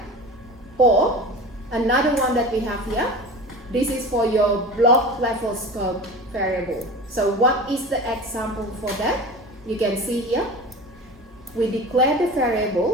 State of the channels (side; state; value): both; normal; correlation 0.33